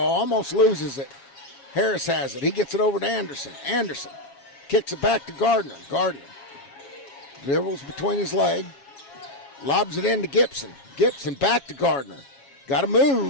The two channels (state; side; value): late; right; 7.2 ms